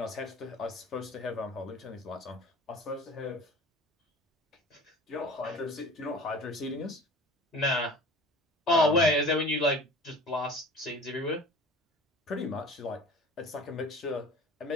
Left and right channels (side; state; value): both; normal; correlation 0.41